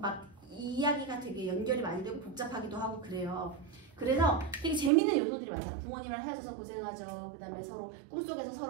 이야기가 되게 연결이 많이 되고 복잡하기도 하고 그래요. 그래서 되게 재밌는 요소들이 많아요. 부모님이랑 헤어져서 고생하죠. 그 다음에 서로 꿈속에서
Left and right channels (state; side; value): drops out; left; at 4.9 s